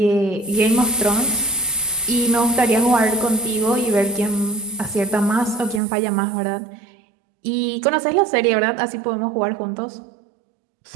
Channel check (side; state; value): left; drops out; at 5.8 s